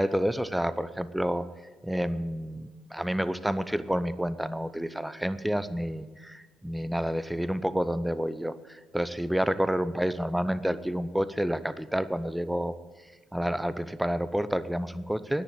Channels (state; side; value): normal; both; correlation 0.98